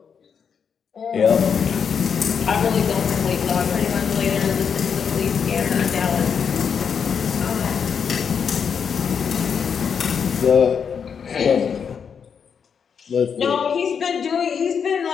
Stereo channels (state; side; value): quieter; right; 6.9 dB